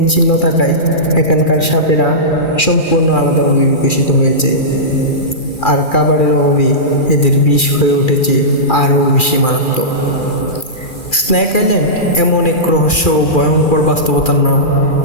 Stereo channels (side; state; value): right; late; 2.4 ms